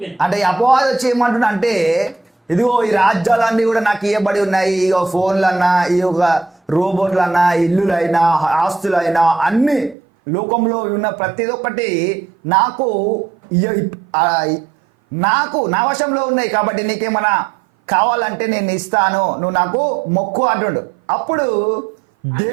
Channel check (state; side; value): drops out; left; at 10.0 s